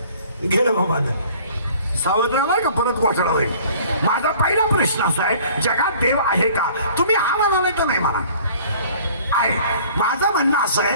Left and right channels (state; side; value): inverted; both; correlation -0.51